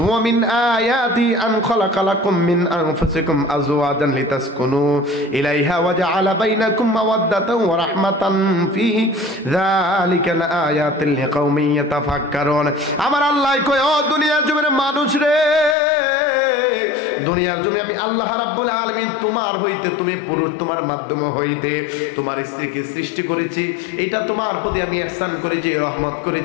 ওয়া মিন আয়াতি আন খালাকালাকুম মিন আনফুসিকুম আজওয়াজান লিতাসকুনু ইলাইহা ওয়া জাআলা বাইনাকুম মাওয়াদ্দাতান ওয়া রাহমাতান ফি যালিকা লাআয়াতিন লিকাউমিন ইয়াতাফাক্কারুন। আমার আল্লাহ কয়, ও দুনিয়ার জমিনের মানুষ রে, দুনিয়ার জমিনে আমি আল্লাহ রাব্বুল আলামিন তোমার হইতে, তুমি পুরুষ, তোমার মাধ্যমে হইতে তোমার স্ত্রীকে সৃষ্টি করেছি। এটা তোমার প্রতি আমি ইহসান করেছি, রহমত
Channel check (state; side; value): drops out; right; at 15.8 s